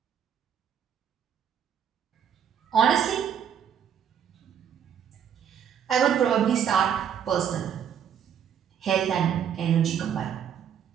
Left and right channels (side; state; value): left; quieter; 8.5 dB